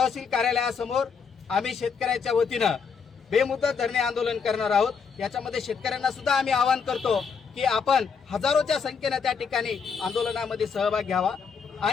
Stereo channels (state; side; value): quieter; right; 6.0 dB